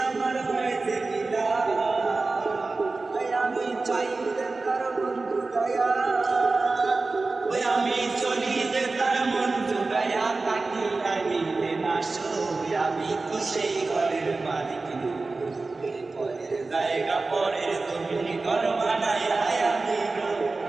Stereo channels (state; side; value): quieter; left; 3.6 dB